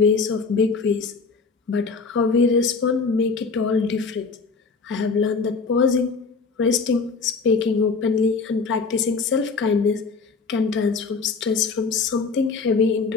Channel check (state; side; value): quieter; right; 4.6 dB